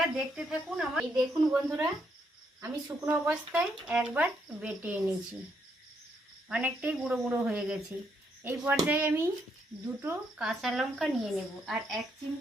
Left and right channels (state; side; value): normal; both; correlation 0.75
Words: দেখতে থাকুন। এই দেখুন বন্ধুরা, আমি শুকনো অবস্থায় একবার বেটে এনেছি, অনেকটাই গুঁড়ো গুঁড়ো হয়ে গেছে। এই পর্যায়ে আমি 2টো কাঁচা লঙ্কা নিয়ে নেব আর 1